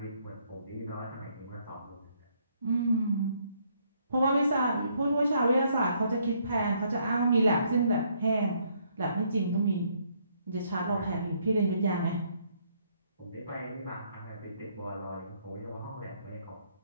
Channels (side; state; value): both; inverted; correlation -0.69